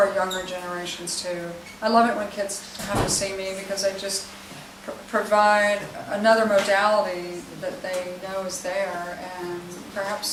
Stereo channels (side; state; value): both; identical; correlation 1.00